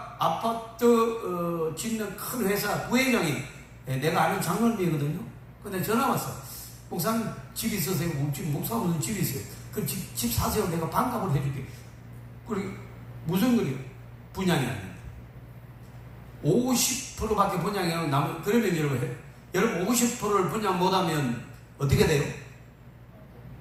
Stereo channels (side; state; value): both; identical; correlation 1.00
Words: 아파트 짓는 큰 회사 부회장이 내가 아는 장로님이거든요. 근데 전화 왔어. 목사님 집 있으세요? 목사님 무슨 집이 있어요? 그 집 사세요. 내가 반값을 해줄게. 그리고 무슨 거리요? 분양이 아닙니다. 50%밖에 분양이 안 나면, 그러면 여러분 50%를 분양 못하면 어떻게 돼요?